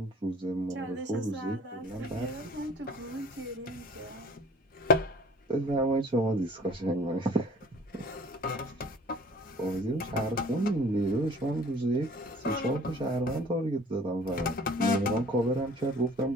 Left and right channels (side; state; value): both; normal; correlation 0.51